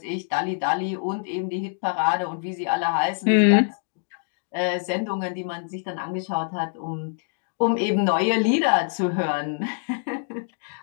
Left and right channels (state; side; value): silent; right; digital silence